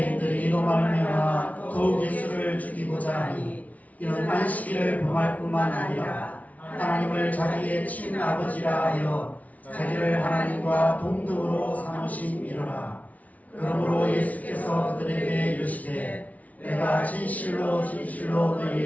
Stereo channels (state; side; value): late; right; 0.071 ms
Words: 이로 말미암아 더욱 예수를 죽이고자 하니 이는 안식일을 범할 뿐만 아니라 하나님을 자기의 친아버지라 하여 자기를 하나님과 동등으로 삼으심이로라. 그러므로 예수께서 그들에게 이르시되 내가 진실로 진실로